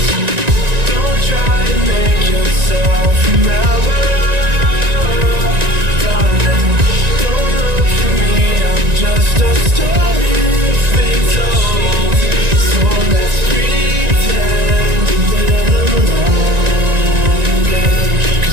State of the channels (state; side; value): late; left; 1.9 ms